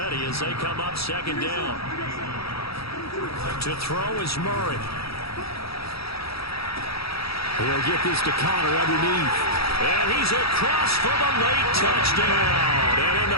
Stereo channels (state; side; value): late; right; 0.77 ms